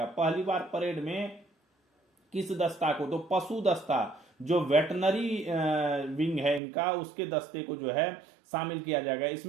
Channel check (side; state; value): left; drops out; at 6.6 s